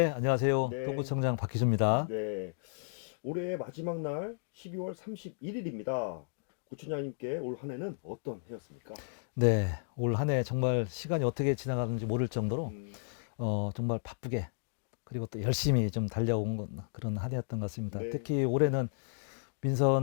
안녕하세요. 네, 동구청장 박희주입니다. 네. 올해 마지막 날 12월 31일입니다. 구청장님께 올 한 해는 어떤 해였습니까? 네, 올 한 해 정말 시간이 어떻게 지나가는지 모를 정도로 음, 정말 바쁘게 그리고 또 열심히 좀 달려온 그런 한 해였던 것 같습니다. 네, 특히 올해는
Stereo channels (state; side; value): silent; right; digital silence